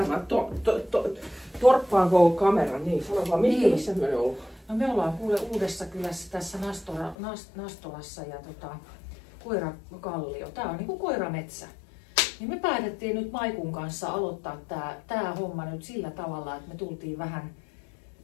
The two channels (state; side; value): drops out; right; at 7.2 s